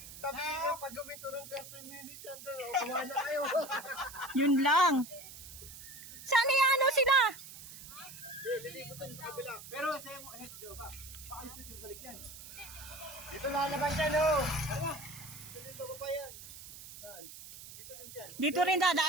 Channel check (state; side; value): noise; right; hiss, 14 dB below the sound